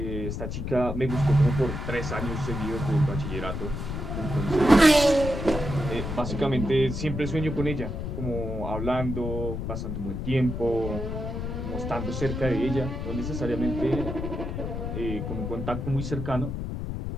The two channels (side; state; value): left; noise; rumble, 4 dB below the sound